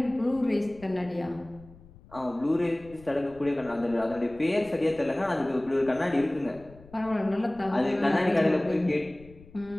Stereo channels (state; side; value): noise; left; rumble, 22 dB below the sound